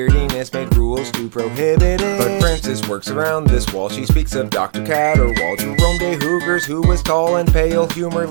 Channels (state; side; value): silent; left; digital silence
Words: made rules to prohibit it. But Frances works around this while she speaks of Dr. Catterwall, Jerome de Hoogers, who was tall and pale,